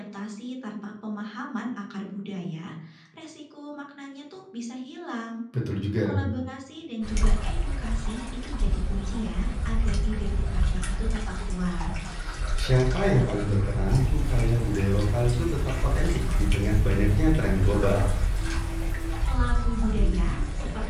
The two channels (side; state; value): both; identical; correlation 1.00